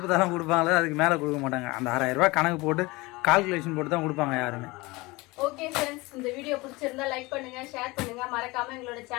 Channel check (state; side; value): quieter; right; 22.9 dB